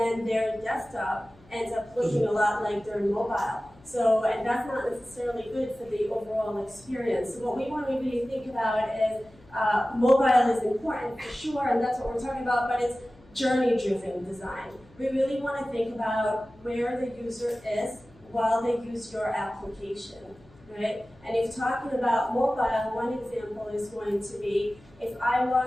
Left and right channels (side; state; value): left; noise; hum, 27 dB below the sound